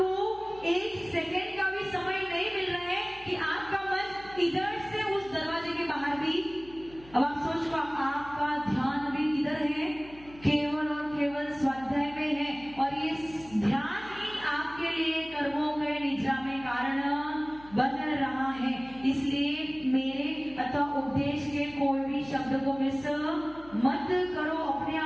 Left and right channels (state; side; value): noise; left; hum, 22 dB below the sound